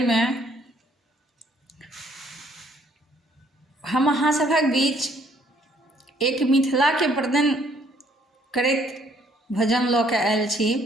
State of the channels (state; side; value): normal; both; correlation 0.64